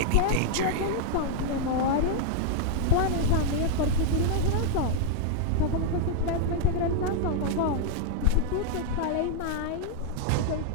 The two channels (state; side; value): different; both; correlation -0.01